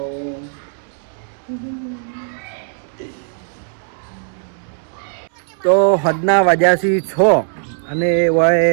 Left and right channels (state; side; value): silent; left; 67 dB below the other